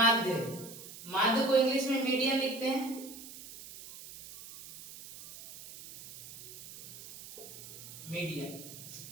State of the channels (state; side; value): noise; right; hiss, 15 dB below the sound